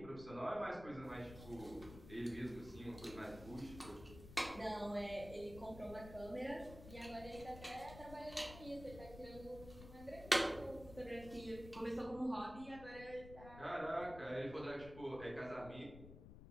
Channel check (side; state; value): left; noise; rumble, 13 dB below the sound